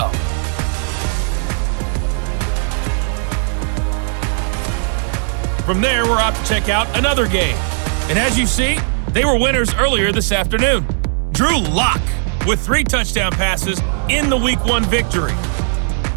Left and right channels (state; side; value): silent; left; digital silence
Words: From there, we're off to check out another game. And as you see, they were winners earlier this afternoon. Drew Lock with 3 touchdown passes in the Week 1 victory.